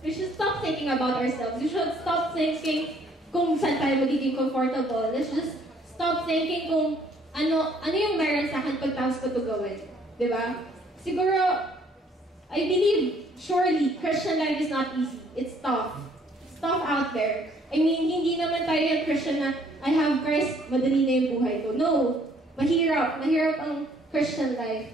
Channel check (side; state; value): both; normal; correlation 0.62